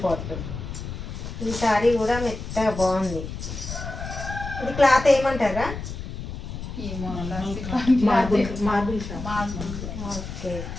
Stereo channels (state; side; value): noise; left; rumble, 8 dB below the sound